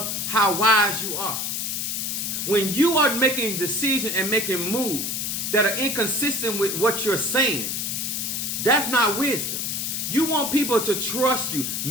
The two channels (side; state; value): left; noise; hiss, 2 dB below the sound